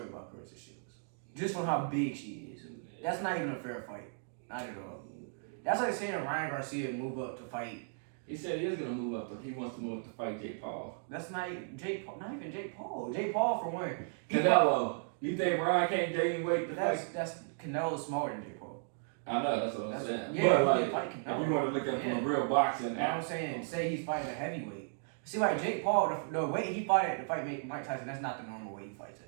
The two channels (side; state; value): left; silent; digital silence